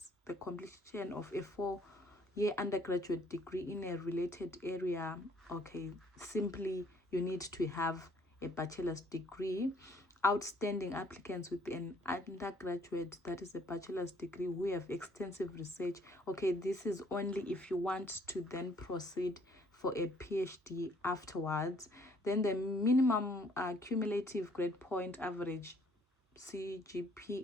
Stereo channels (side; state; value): both; normal; correlation 0.62